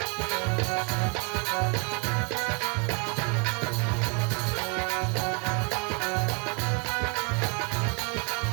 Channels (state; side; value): quieter; left; 32.2 dB